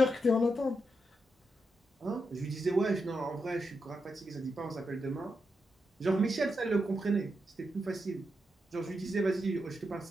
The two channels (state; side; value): normal; both; correlation 0.85